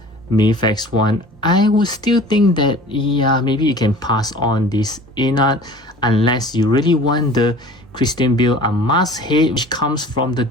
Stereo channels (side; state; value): both; normal; correlation 0.44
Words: Mafex one, I would still think that yeah, maybe you can pass on this Inart, unless you really want the Christian Bale unmasked head, which comes from the